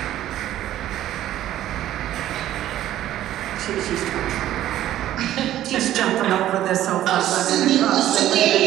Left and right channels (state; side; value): quieter; left; 13.0 dB